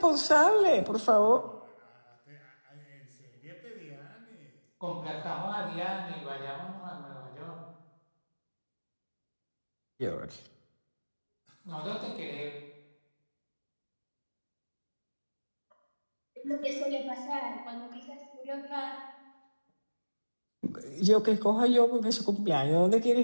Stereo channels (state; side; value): inverted; both; correlation -1.00